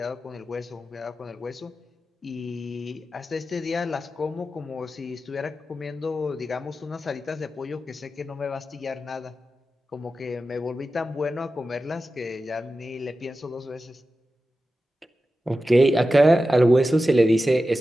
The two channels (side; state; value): both; normal; correlation 0.93